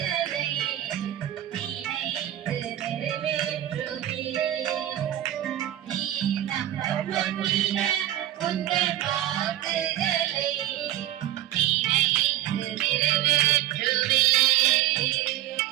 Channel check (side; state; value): left; quieter; 13.2 dB